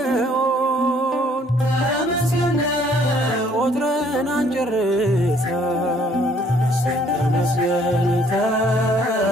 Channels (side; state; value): both; normal; correlation 0.62